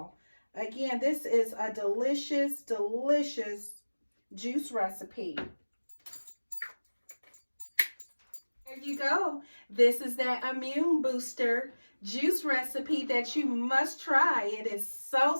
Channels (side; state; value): both; inverted; correlation -1.00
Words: Again, this is a delicious, delicious juice recipe. There you go. This is that immune booster juice recipe that you must try. It is